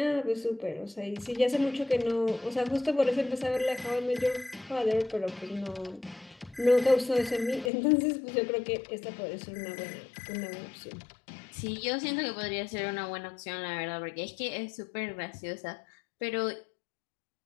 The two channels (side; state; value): right; drops out; at 7.7 s